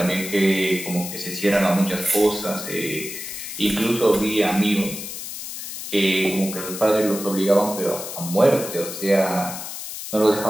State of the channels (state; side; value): noise; left; hiss, 8 dB below the sound